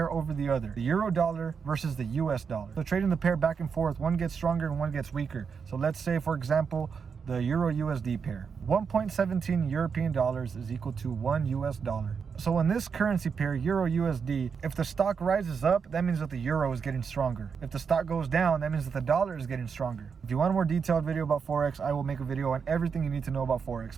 over the other. The euro dollar versus the US dollar. So trading the pair back and forth, one gets stronger and one gets weaker. So let's say, for example, the Euro USD pair. 1.17 European dollars is equal to 1 US dollar. So in this currency pair, Euro USD, if the stock rises up, that means that the euro is getting stronger. If the stock goes down, that means that the dollar is getting stronger. If you want a more detailed video about Forex, I will make a video on everything you need to know about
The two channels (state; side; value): quieter; left; 6.1 dB